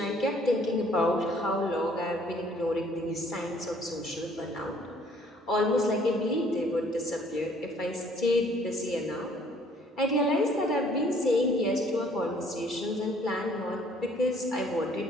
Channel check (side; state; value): both; normal; correlation 0.60